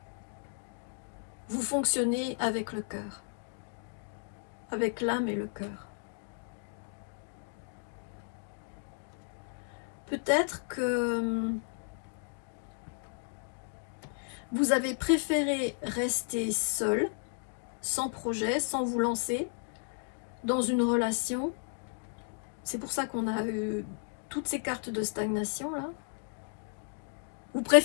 vous fonctionnez avec le cœur, avec l'âme et le cœur. Peut-être que vous avez préféré rester seul, sans projet, sans vous lancer dans une relation. C'est pour ça qu'on a eu toutes ces cartes de stagnation là. Vous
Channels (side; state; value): right; silent; 55 dB below the other